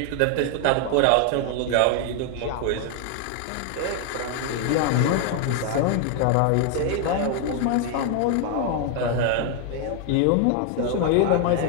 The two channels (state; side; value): different; both; correlation 0.00